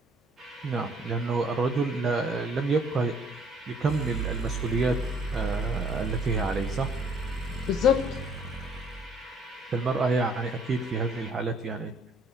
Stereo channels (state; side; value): normal; both; correlation 0.60